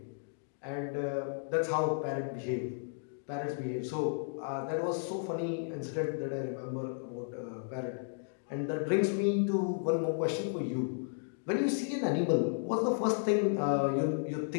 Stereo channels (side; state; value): right; silent; digital silence